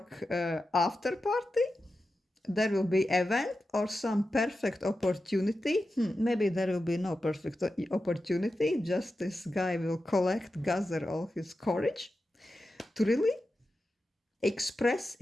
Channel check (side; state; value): both; normal; correlation 0.91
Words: after party. There will be event or some perfect opportunity. Maybe there will be no perfect opportunity. Just this guy will gather all his courage to really express